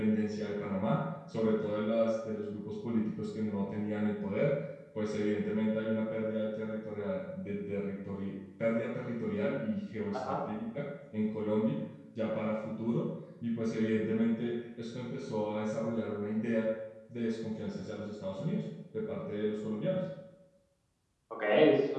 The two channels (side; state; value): both; identical; correlation 1.00